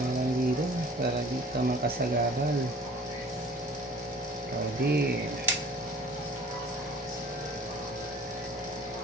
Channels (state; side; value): normal; both; correlation 0.48